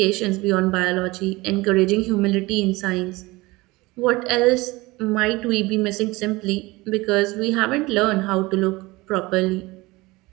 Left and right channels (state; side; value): quieter; left; 21.6 dB